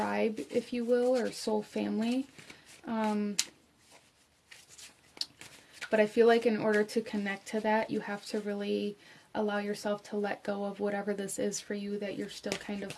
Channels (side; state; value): both; identical; correlation 1.00